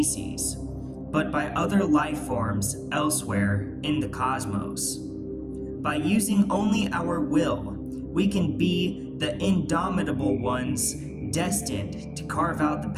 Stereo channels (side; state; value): both; identical; correlation 1.00